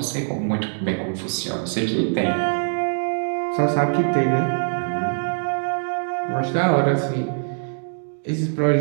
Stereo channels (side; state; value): left; silent; digital silence